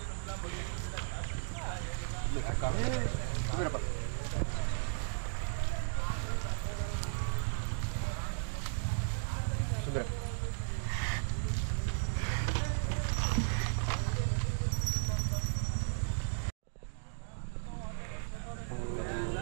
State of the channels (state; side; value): silent; left; digital silence